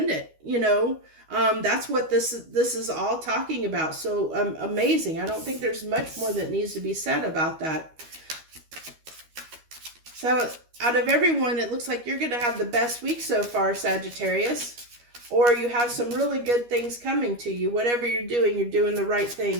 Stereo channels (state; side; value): late; left; 13 ms